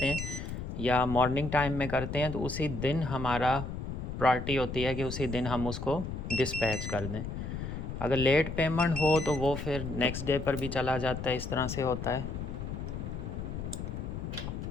हैं या मॉर्निंग टाइम में करते हैं तो उसी दिन हमारा प्रायोरिटी होती है कि उसी दिन हम उसको डिस्पैच कर दें। अगर लेट पेमेंट हो तो वो फिर नेक्स्ट डे पर भी चला जाता है, इस तरह से होता है।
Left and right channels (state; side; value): noise; left; rumble, 6 dB below the sound